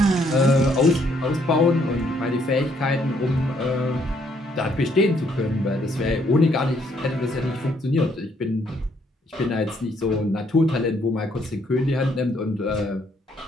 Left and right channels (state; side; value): normal; both; correlation 0.69